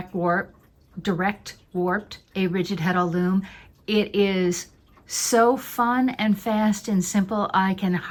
warped a rigid heddle loom, it is so fun and fast and simple I can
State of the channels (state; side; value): identical; both; correlation 1.00